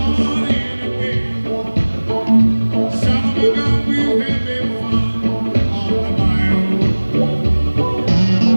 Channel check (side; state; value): both; inverted; correlation -1.00